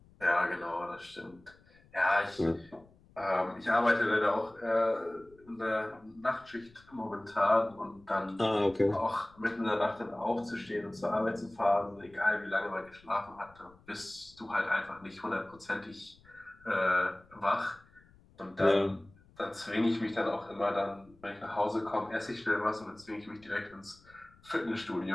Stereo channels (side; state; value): left; noise; rumble, 27 dB below the sound